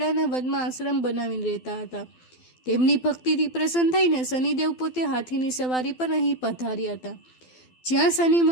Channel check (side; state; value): right; late; 12 ms